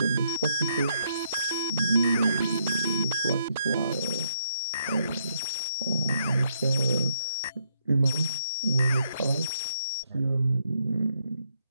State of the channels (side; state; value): both; inverted; correlation -0.71